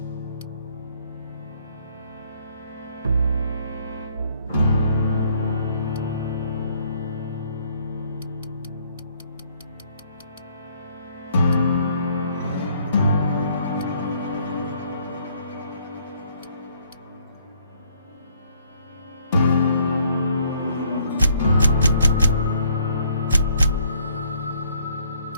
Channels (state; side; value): inverted; both; correlation -0.64